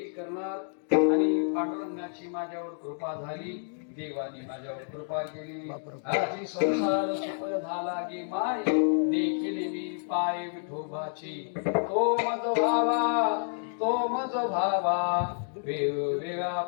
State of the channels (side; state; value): right; silent; digital silence